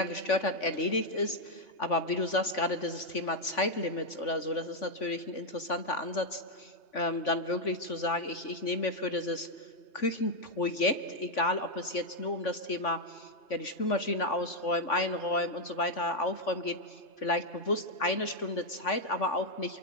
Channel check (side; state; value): right; late; 3.5 ms